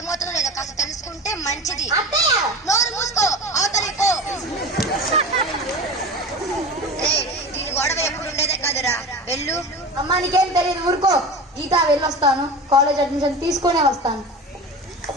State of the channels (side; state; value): both; normal; correlation 0.31